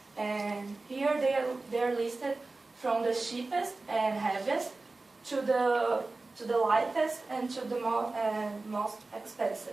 And here they are listed from the cheapest and heaviest to the lightest and to the most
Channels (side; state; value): left; quieter; 3.4 dB